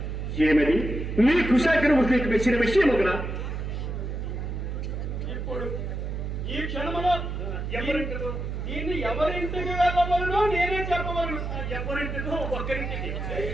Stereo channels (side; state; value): right; noise; hum, 4 dB below the sound